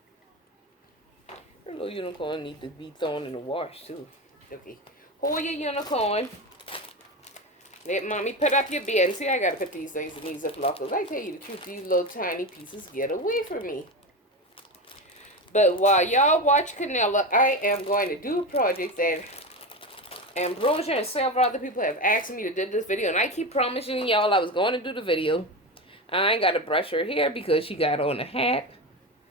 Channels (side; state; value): both; normal; correlation 0.20